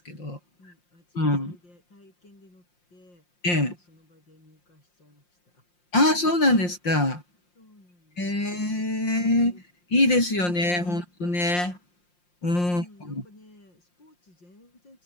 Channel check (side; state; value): right; late; 5.7 ms